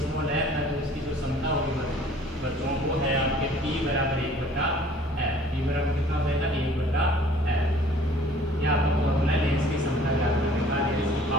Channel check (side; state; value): right; noise; hum, 21 dB below the sound